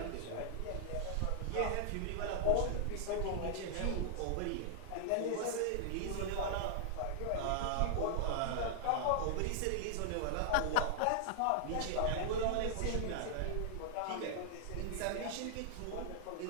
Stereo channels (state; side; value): different; both; correlation -0.01